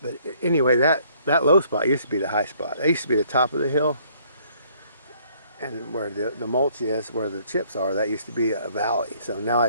But anyway, that low spot used to be the high spot. That used to be the top of the hill. And where the mulch is, where the chips are, that used to be a valley. So now I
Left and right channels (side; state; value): both; inverted; correlation -0.63